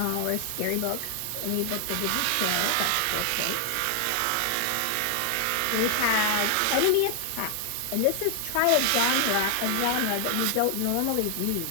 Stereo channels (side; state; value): both; different; correlation 0.00